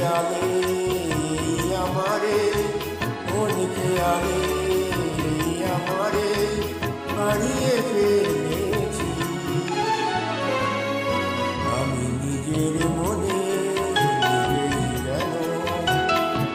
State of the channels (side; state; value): both; identical; correlation 1.00